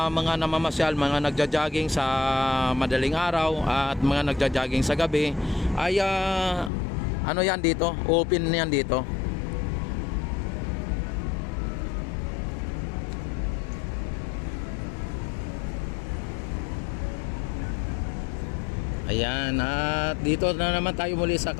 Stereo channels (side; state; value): right; drops out; at 6.7 s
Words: mga namamasyal, mga nagja-jogging sa madaling araw at mga nagja-jogging sa gabi ay yan dito, open yan dito. Ayan, at dito na naman tayo muli sa